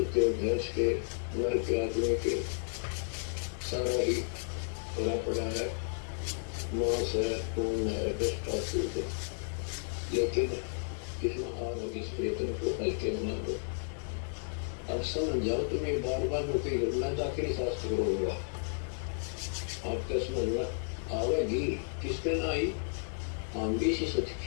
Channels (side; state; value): right; silent; digital silence